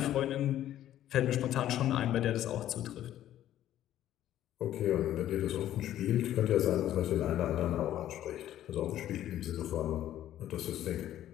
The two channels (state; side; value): quieter; right; 12.3 dB